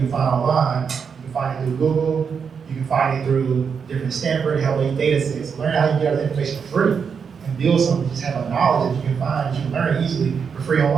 find online. You can find it through Google. You can find it through different Stanford, Help data sets. Learn how you get all the information for free and build something. Just have a knowledge that you can find, that you can learn easily for free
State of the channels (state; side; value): quieter; left; 6.4 dB